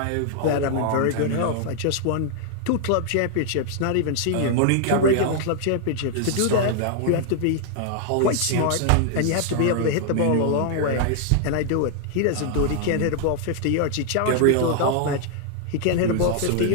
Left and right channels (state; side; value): different; both; correlation 0.00